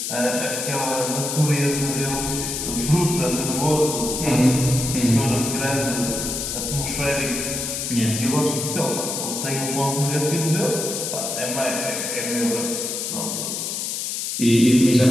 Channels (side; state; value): left; noise; hiss, 3 dB below the sound